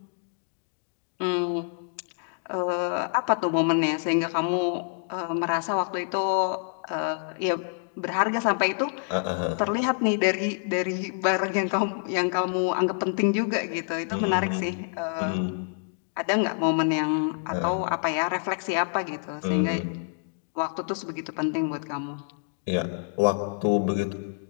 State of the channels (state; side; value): silent; right; digital silence